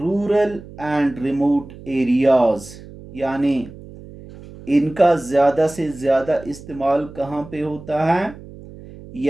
and remote areas. यानी इनका ज़्यादा से ज़्यादा इस्तेमाल कहाँ पे होता है,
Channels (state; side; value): noise; right; hum, 17 dB below the sound